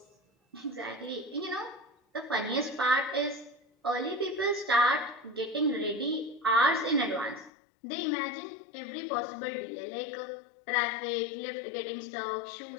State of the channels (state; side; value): drops out; right; at 7.5 s